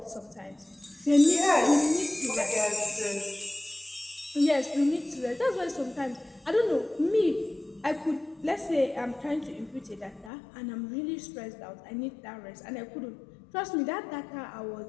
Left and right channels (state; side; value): drops out; right; at 10.3 s